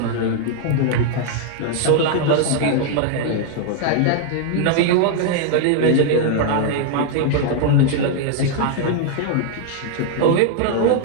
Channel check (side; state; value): both; different; correlation 0.00